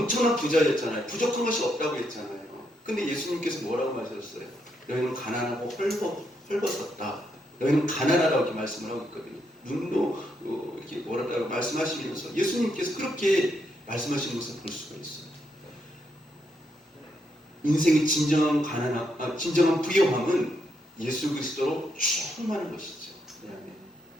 부자였잖아요. 부족한 것이 없다고 했잖아요. 근데 예수님께서 뭐라고 말씀하셨어요? 너희는 가난하고 헐벗었다. 너희는 가난하다고 이렇게 말씀을 하고 있거든요. 눈도 이렇게 뭐라고 말씀하시면서 예수님께서 그렇게 말씀하시는 것을 볼 수가 있어요. 인생의 진정한 부요함은 예수 그리스도로 충만한 것이죠.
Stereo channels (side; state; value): both; normal; correlation 0.78